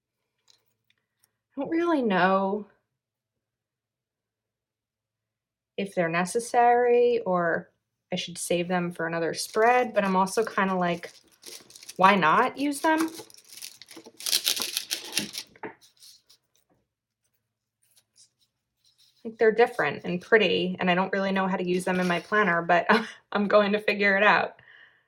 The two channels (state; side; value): identical; both; correlation 1.00